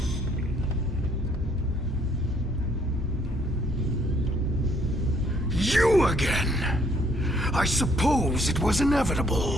You again! I suppose it was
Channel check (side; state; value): both; normal; correlation 0.65